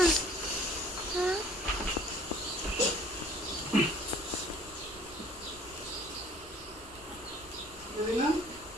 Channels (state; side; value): normal; both; correlation 0.53